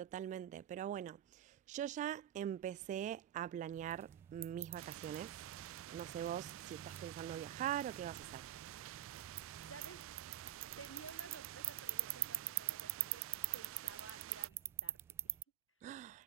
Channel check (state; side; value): quieter; left; 10.8 dB